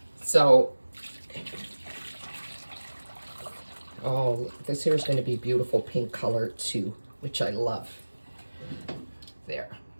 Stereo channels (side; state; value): both; inverted; correlation -1.00